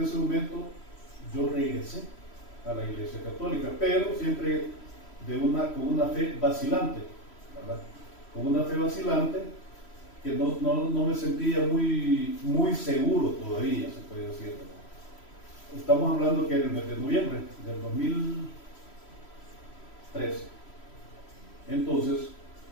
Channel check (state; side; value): late; right; 3.1 ms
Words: ese momento, yo regresé a la Iglesia Católica, pero siempre con una fe vacilante, ¿verdad? Con una fe vacilante que no me sentía muy seguro todavía, se puede decir, ¿verdad? Estamos hablando que en el mes de noviembre del 2013. Entonces,